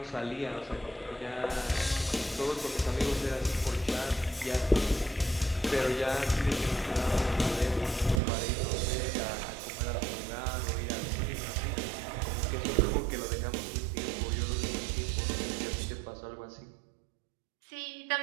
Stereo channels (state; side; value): drops out; left; at 8.2 s